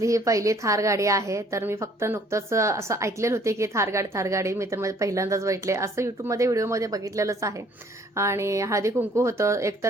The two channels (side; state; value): both; normal; correlation 0.59